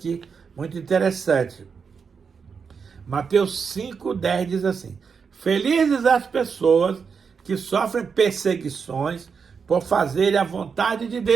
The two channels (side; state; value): left; quieter; 5.9 dB